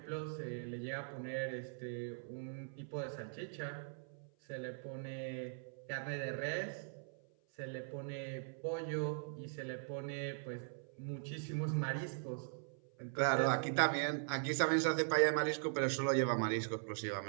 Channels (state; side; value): silent; left; 51 dB below the other